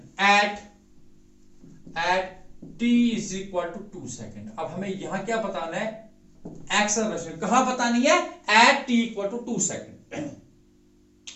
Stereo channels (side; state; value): both; identical; correlation 1.00